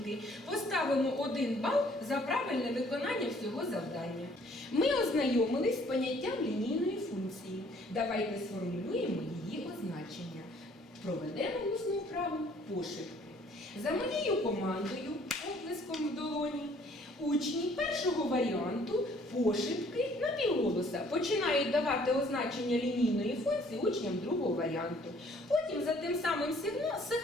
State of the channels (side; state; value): both; normal; correlation 0.59